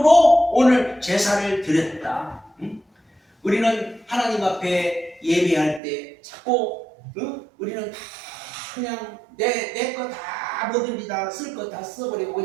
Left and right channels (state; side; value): drops out; left; at 5.8 s